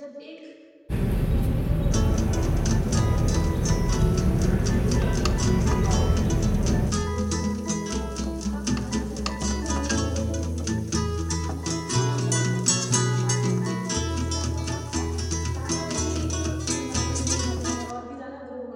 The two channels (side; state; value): both; identical; correlation 1.00